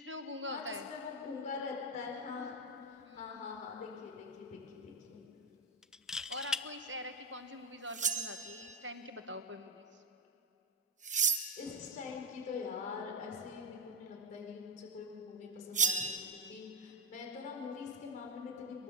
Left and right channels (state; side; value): normal; both; correlation 0.11